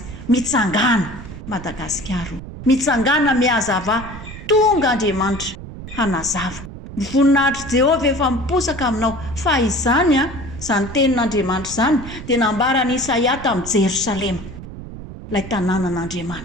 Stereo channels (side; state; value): right; noise; rumble, 12 dB below the sound